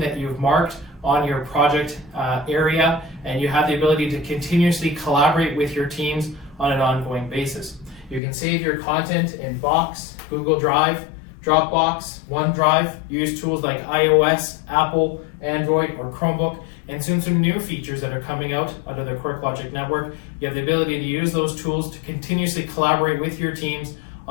that you've marked on your project area, and you have the ability to continuously collaborate with your teams on an ongoing basis. You can save your content in Box, Google Drive, Dropbox, OneDrive, use tools like iOS, Apple, Android, or Chromebook, and soon some new features that are coming out of the QuirkLogic network. You have the ability to use those tools to continuously collaborate with your teams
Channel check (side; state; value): right; drops out; at 8.2 s